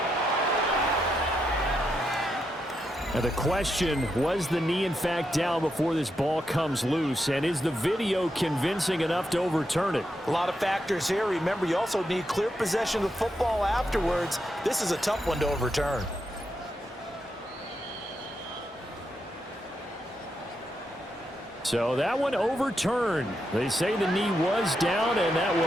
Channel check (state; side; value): normal; both; correlation 0.83